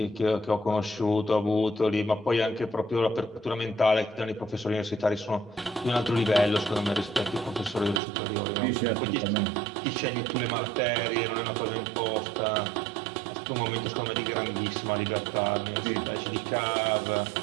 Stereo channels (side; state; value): left; drops out; at 8.0 s